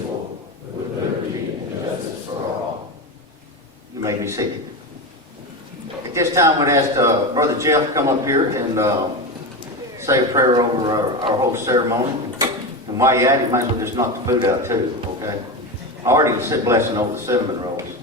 with liberty and justice for all. You may be seated. At this time, we'd ask Brother Jeff to come up here and say a prayer over our whole ceremony. And while you're at it, you might as well just knock the food out too, okay? I already said blessing over the cinnamon rolls,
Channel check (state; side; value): normal; both; correlation 0.19